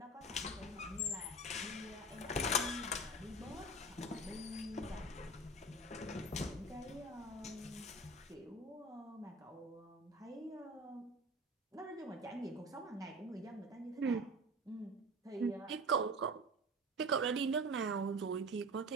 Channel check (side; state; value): both; normal; correlation 0.34